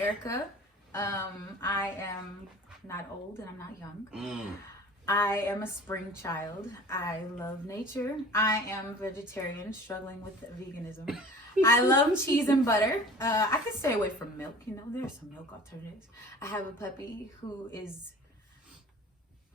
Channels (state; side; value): normal; both; correlation 0.43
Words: I am not old and I'm not young. I am a spring child. I love nature. I am vegetarian, struggling with veganism. I love cheese and butter. I could stay away from milk. There's some milk alternatives. I have a puppy who is